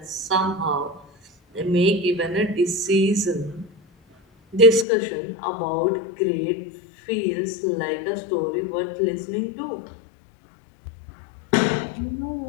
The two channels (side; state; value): right; drops out; at 4.9 s